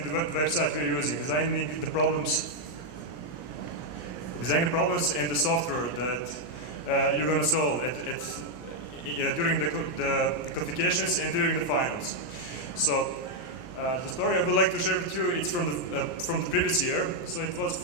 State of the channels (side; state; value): right; late; 17 ms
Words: the website we're using, designing the problems and the software that you're going to solve during the qualifications and during the finals. So the story I would like to share with you, it's from the previous year. So it was